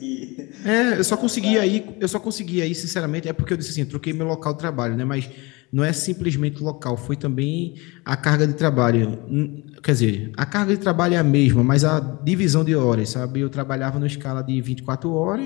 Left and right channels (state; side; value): quieter; right; 25.2 dB